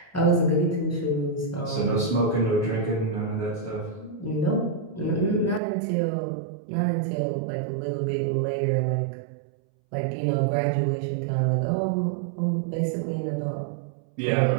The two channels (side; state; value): left; drops out; at 5.6 s